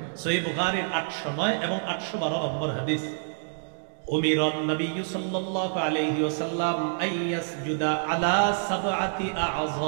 সহিহ বুখারীর 809 এবং 812 নম্বর হাদিস। উমিরান নবী সাল্লাল্লাহু আলাইহি ওয়াসাল্লাম আইয়াসজুদা আলা সাবআতি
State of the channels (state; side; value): silent; left; digital silence